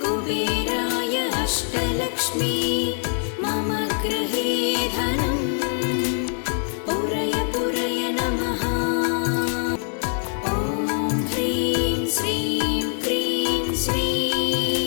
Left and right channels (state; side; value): silent; right; 55 dB below the other